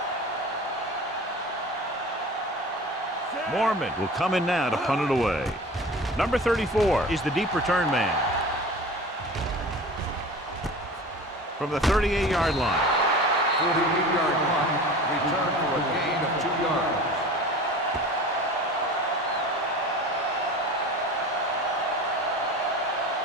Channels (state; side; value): normal; both; correlation 0.37